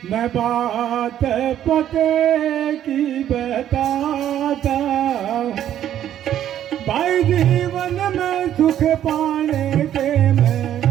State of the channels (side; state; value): left; quieter; 11.0 dB